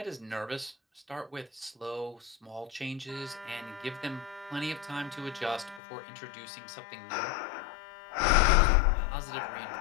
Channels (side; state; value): right; drops out; at 5.8 s